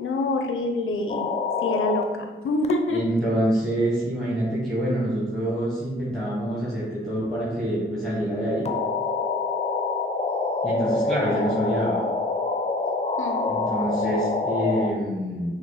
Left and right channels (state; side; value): normal; both; correlation 0.50